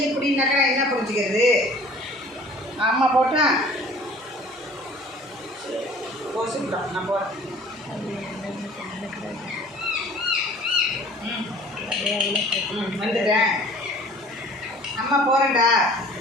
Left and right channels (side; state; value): both; normal; correlation 0.49